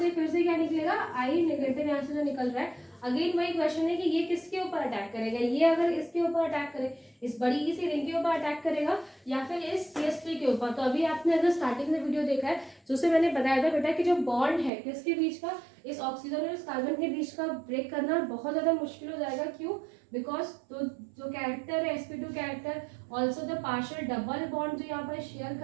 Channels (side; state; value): left; drops out; at 14.7 s